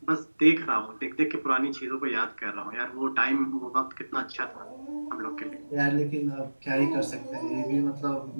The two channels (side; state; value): both; inverted; correlation -1.00